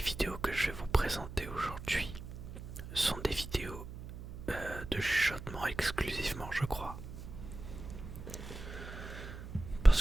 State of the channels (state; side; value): noise; right; hum, 11 dB below the sound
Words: que je vais vous présenter aujourd'hui sont des vidéos de chuchotement exclusivement, je crois.